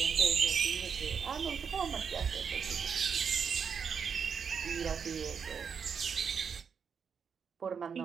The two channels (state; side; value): quieter; left; 6.6 dB